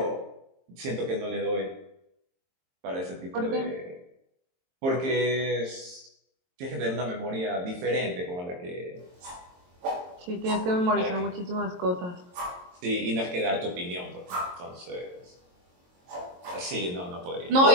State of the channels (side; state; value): left; late; 22 ms